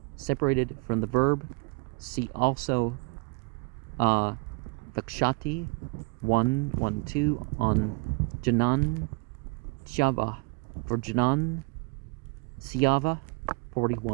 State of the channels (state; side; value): quieter; left; 29.5 dB